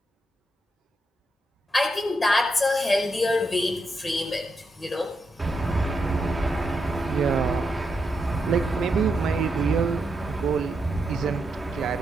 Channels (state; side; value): normal; both; correlation 0.83